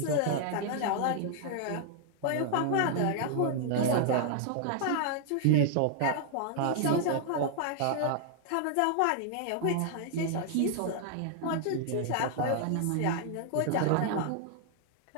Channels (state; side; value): different; both; correlation 0.00